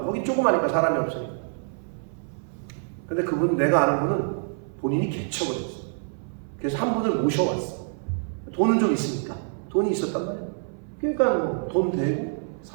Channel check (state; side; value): silent; left; 61 dB below the other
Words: 거기 조그마니까 사람이 없으니까. 근데 그분, 내가 아는 분은 본인이 개척을 했어. 그래서 한 분을 모셔왔어. 돈은 좀 있으니까. 돈이 있었단 말이야. 그러니까 뭐 돈 대고